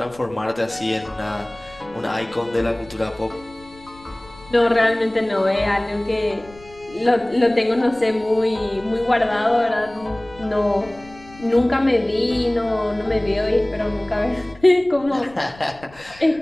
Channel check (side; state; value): left; noise; rumble, 23 dB below the sound